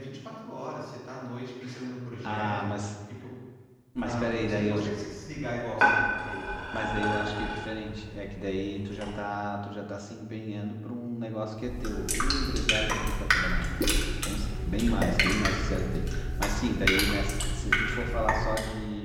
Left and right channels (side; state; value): both; identical; correlation 1.00